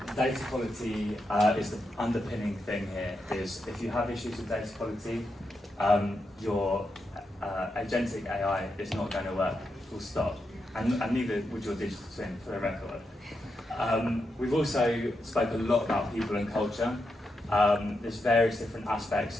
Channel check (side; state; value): both; normal; correlation 0.85